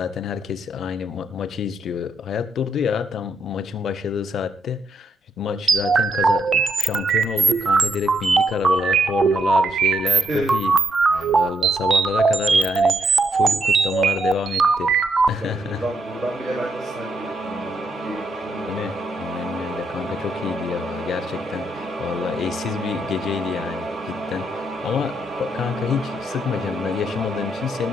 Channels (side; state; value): both; normal; correlation 0.77